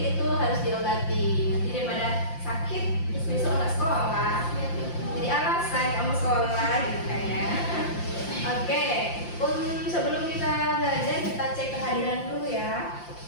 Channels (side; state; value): right; late; 5.8 ms